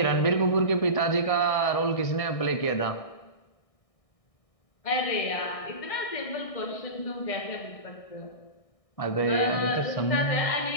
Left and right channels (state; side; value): late; right; 1.6 ms